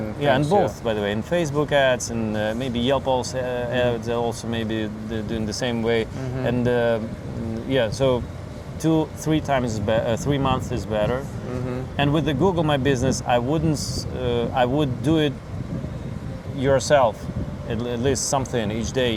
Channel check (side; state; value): both; identical; correlation 1.00